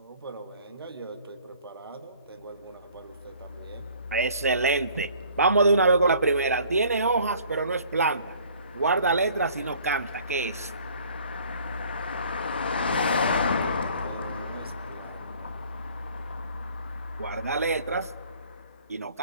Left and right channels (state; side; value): inverted; both; correlation -0.54